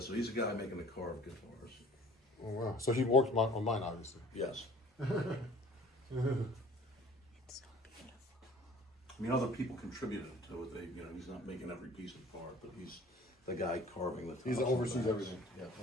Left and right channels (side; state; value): both; normal; correlation 0.50